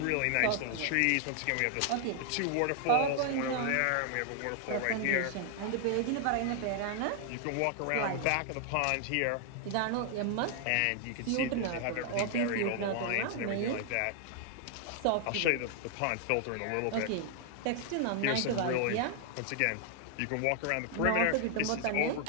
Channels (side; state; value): both; different; correlation 0.00